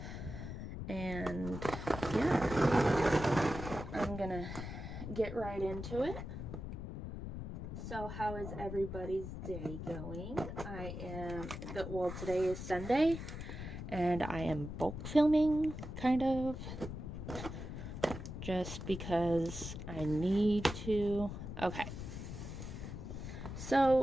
yeah, I'm gonna get right into it. So how is everybody's day going? Today is Sunday and I am bulk filming, kind of, just because I need to. Okay.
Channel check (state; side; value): noise; left; rumble, 7 dB below the sound